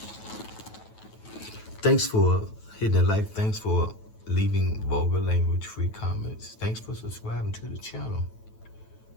Thanks for hitting the like. Thanks for leaving vulgar language free comments. Thanks for subscribing to the channel.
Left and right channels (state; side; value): late; right; 9.2 ms